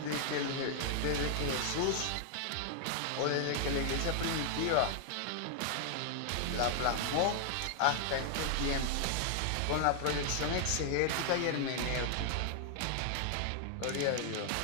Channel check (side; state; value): both; different; correlation 0.00